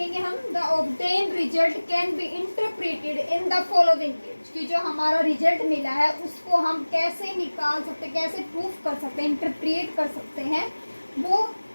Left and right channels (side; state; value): both; inverted; correlation -1.00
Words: हम, the obtain result can be interpreted in the following veg, कि जो हमारा रिजल्ट मिला है उसको हम कैसे निकाल सकते, कैसे प्रूफ कर सकते हैं, इंटरप्रेट कर सकते हैं, वो